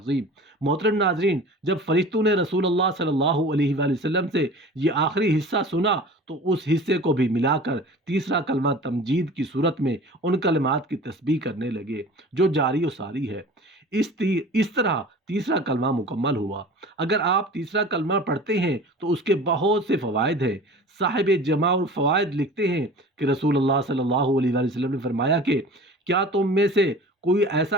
محترم ناظرین، جب فرشتوں نے رسول اللہ صلی اللہ علیہ وسلم سے یہ آخری حصہ سنا تو اس حصے کو بھی ملا کر تیسرا کلمہ تمجید کی صورت میں ان کلمات کی تسبیح کرنے لگے جو جاری و ساری ہے۔ اس طرح تیسرا کلمہ مکمل ہوا۔ اگر آپ تیسرا کلمہ پڑھتے ہیں تو اس کے بہت سے فوائد ہیں۔ صاحب جمع الفوائد لکھتے ہیں کہ رسول اللہ صلی اللہ علیہ وسلم نے فرمایا کہ کیا تم میں سے کوئی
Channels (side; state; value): both; normal; correlation 0.41